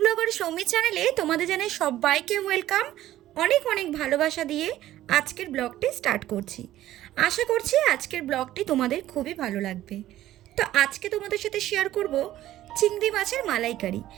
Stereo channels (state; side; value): quieter; left; 13.9 dB